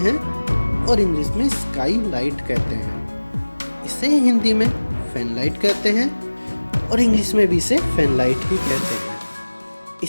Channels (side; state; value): both; inverted; correlation -1.00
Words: और इंग्लिश में स्काई लाइट कहते हैं। इसे हिंदी में फैन लाइट कहते हैं और इंग्लिश में भी इसे फैन लाइट ही कहते हैं।